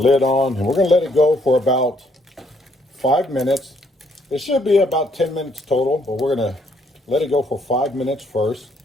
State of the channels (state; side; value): normal; both; correlation 0.69